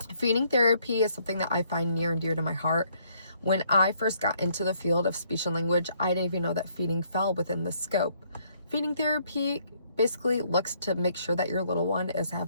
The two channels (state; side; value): inverted; both; correlation -0.68